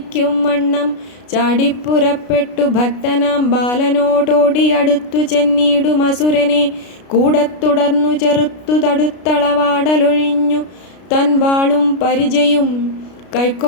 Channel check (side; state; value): right; late; 33 ms